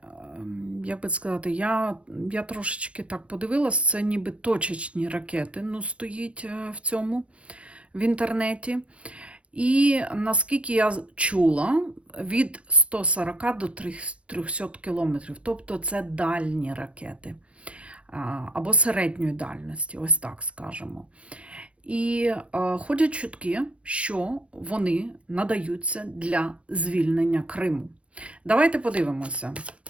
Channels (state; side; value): late; left; 0.061 ms